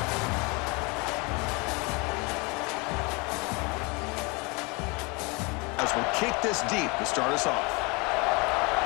As we'll kick this deep to start us off.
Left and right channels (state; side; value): quieter; right; 28.5 dB